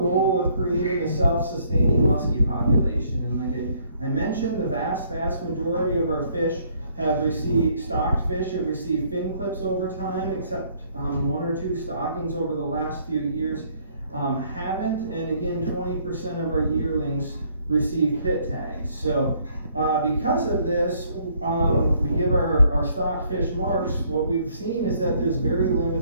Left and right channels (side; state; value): both; inverted; correlation -0.64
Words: of creating a self-sustaining muskie population. And like I mentioned, the vast majority of our fish have received, stocked fish have received fin clips over time, except 1 or 2 stockings over the last few years haven't. And again, 20% of our yearlings receive pit tags. So because of this, we give our stock fish marks. What we've seen is that there's very